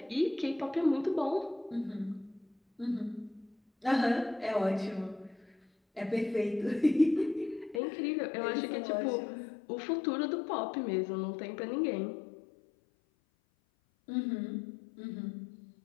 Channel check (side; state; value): right; drops out; at 7.8 s